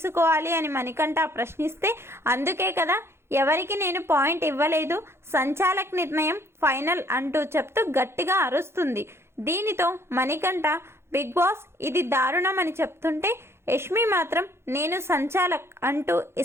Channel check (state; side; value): late; left; 0.12 ms